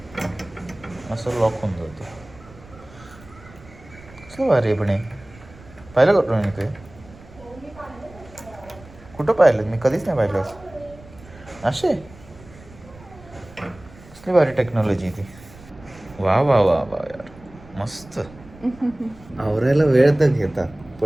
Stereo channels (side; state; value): right; noise; rumble, 21 dB below the sound